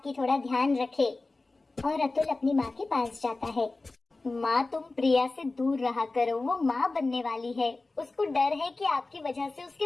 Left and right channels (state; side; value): quieter; right; 3.3 dB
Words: थोड़ा ध्यान रखे। और अतुल अपनी माँ के पास जाता है। माँ, तुम प्रिया से दूर रहा करो, वो माँ बनने वाली है। उसको डर है कि आपकी वजह से